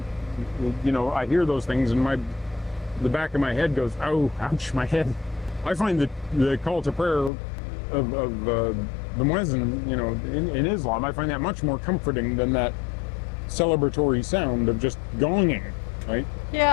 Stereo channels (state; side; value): drops out; right; at 7.3 s